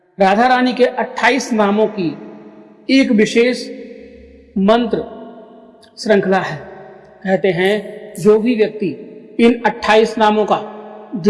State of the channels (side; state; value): both; identical; correlation 1.00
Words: राधा रानी के 28 नामों की एक विशेष मंत्र श्रृंखला है। कहते हैं जो भी व्यक्ति इन 28 नामों का